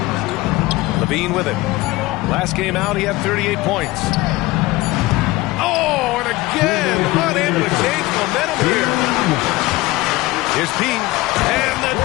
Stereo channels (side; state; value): right; quieter; 19.7 dB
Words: Levine with it. Last game out, he had 38 points. Oh, and again, unable to change momentum here. Here's P. And the